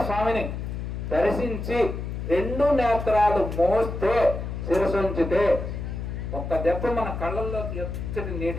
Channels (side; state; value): left; noise; hum, 5 dB below the sound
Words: స్వామిని దర్శించి రెండు నేత్రాలు మోస్తే, శిరసుంచితే ఒక్క దెబ్బ మన కళ్ళల్లోకి ఎచ్చటి